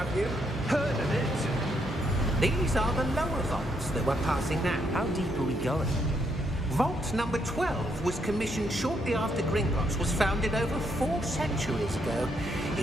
you? Heard of it? These are the lower vaults that we're passing now. How deep are we going? Vault number 12 was commissioned shortly after Gringotts was founded over 4 centuries ago.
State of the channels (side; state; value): both; normal; correlation 0.75